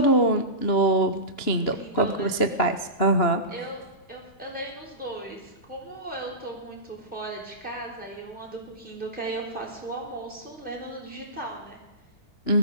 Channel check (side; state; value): right; late; 2.9 ms